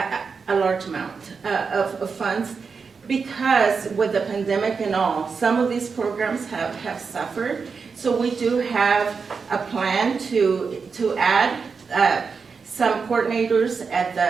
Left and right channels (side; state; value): left; quieter; 5.3 dB